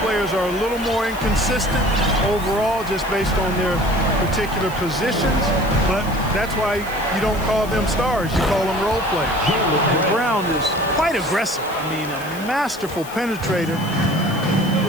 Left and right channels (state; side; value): noise; left; hiss, 17 dB below the sound